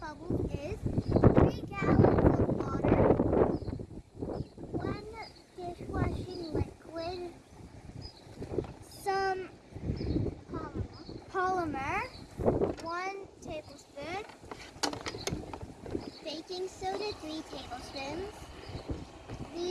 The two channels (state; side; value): identical; both; correlation 1.00